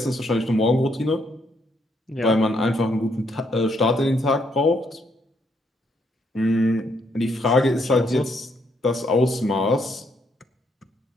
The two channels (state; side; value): normal; both; correlation 0.73